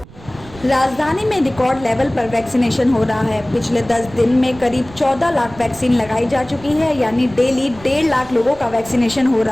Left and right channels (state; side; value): noise; right; rumble, 20 dB below the sound